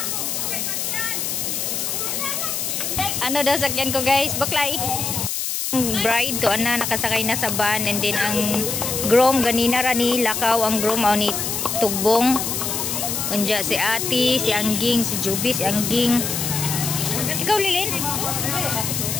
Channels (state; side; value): noise; left; hiss, 2 dB below the sound